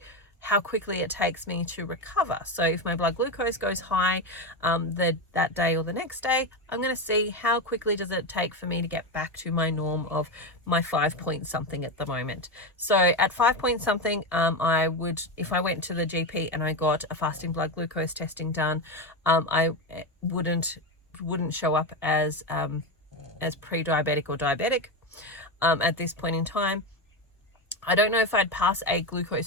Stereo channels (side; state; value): both; normal; correlation 0.15